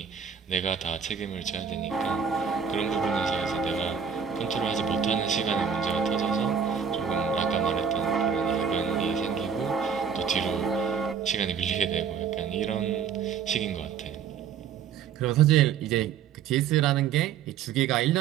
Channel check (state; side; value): quieter; left; 7.2 dB